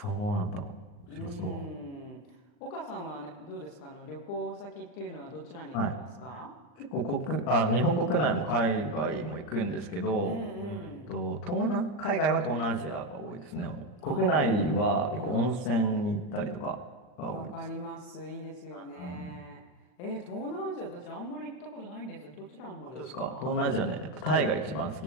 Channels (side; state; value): right; late; 39 ms